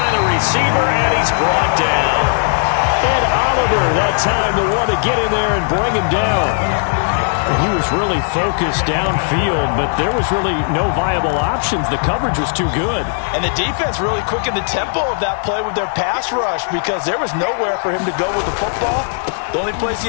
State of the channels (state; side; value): silent; right; digital silence